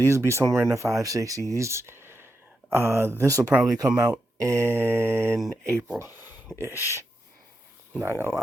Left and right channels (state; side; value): normal; both; correlation 0.86